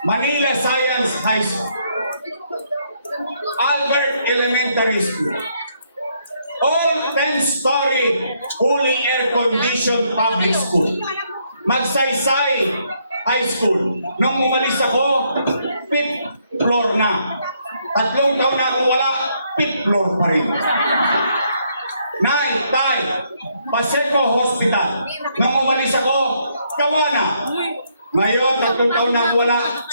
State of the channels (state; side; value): inverted; both; correlation -0.72